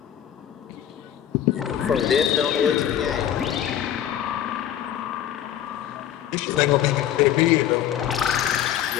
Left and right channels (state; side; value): quieter; right; 10.7 dB